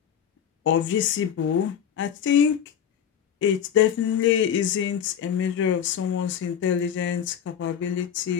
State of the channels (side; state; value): right; quieter; 8.8 dB